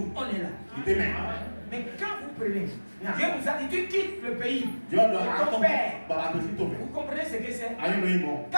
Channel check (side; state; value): both; inverted; correlation -1.00